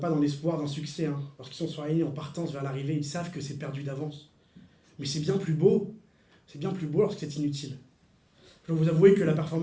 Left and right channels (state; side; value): identical; both; correlation 1.00